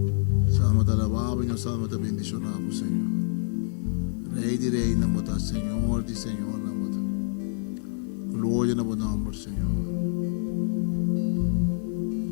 Salmo te alabamos e nos salmo te bendicionamos, Senhor. Rei de Rei, namota, Senhor de Senhor, namota. Glória ao nome, Senhor.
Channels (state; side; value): silent; right; digital silence